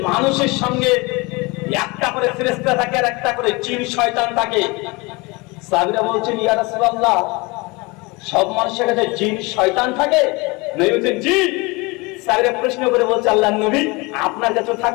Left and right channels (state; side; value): quieter; right; 25.6 dB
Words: মানুষের সঙ্গে একটা করে ফেরেশতা থাকে আর একটা করে জিন শয়তান থাকে। সাহাবীরা বলছেন, ইয়া রাসূলুল্লাহ, সব মানুষের কাছে জিন শয়তান থাকে? নবী বলছেন জি। স্যারের প্রশ্ন করে বলছে আল্লাহর নবী আপনার কাছেও